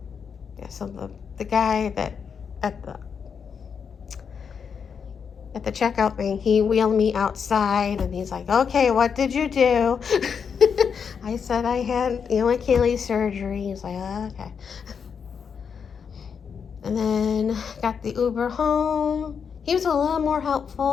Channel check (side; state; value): right; quieter; 6.6 dB